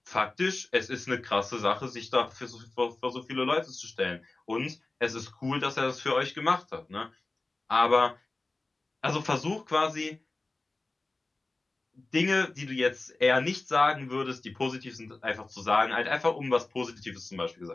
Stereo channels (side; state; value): right; quieter; 3.2 dB